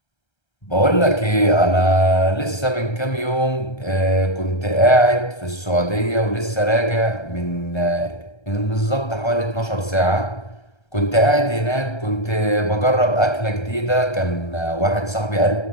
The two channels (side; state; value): right; late; 1.3 ms